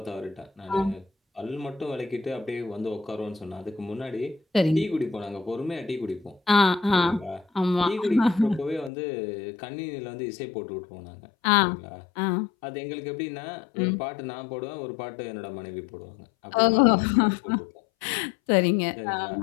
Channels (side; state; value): right; drops out; at 8.9 s